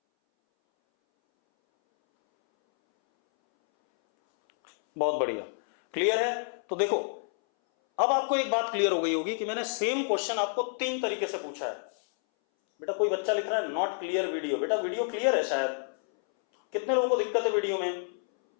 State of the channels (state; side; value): silent; right; 59 dB below the other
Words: बहुत बढ़िया, क्लियर है? तो देखो अब आपको एक बात क्लियर हो गई होगी कि मैंने सेम क्वेश्चन आपको 3 तरीके से पूछा है। बेटा कोई बच्चा लिख रहा है नॉट क्लियर वीडियो, बेटा वीडियो क्लियर है शायद, कितने लोगों को दिक्कत है वीडियो में?